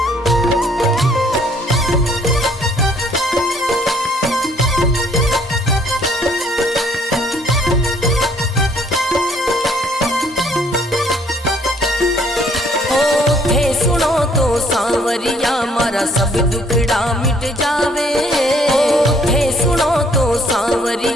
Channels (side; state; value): both; normal; correlation 0.63